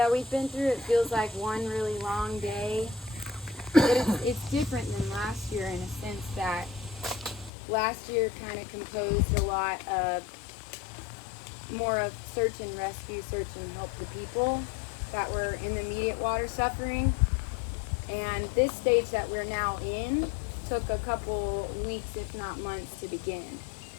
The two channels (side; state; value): right; drops out; at 7.5 s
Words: we've been through. It feels like one really long day. It's different than last year in a sense that last year kind of composed a lot of more of search and rescue, search and help the people that were in the immediate water suffering. And this stage that we're now in took a couple weeks, if not months, to begin.